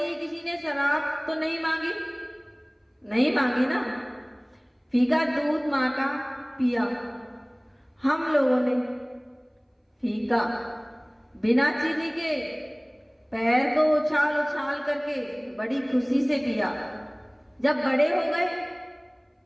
किसी ने शराब तो नहीं मांगी ना, फीका दूध माँ का पिया। हम लोगों ने फीका बिना चीनी के पैर को उछाल उछाल करके बड़ी खुशी से पिया। जब बड़े हो गए,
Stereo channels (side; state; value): both; identical; correlation 1.00